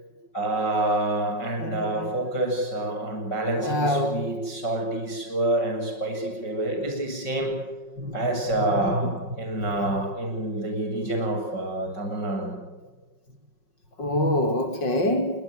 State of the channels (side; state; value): right; late; 5.4 ms